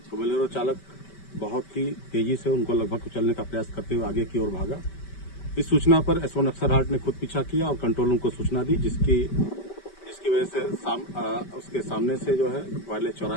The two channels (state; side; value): late; right; 5.2 ms